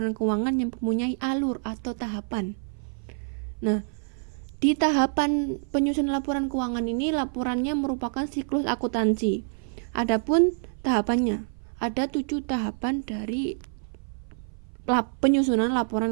keuangan yang mempunyai alur atau tahapan. Nah, di tahapan penyusunan laporan keuangan ini, laporannya merupakan siklus akuntansi. Adapun tahapannya, ada 7 tahapan dari penyusunan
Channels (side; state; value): left; silent; 57 dB below the other